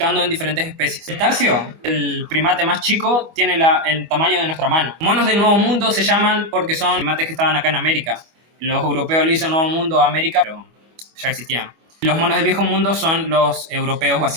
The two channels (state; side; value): late; left; 25 ms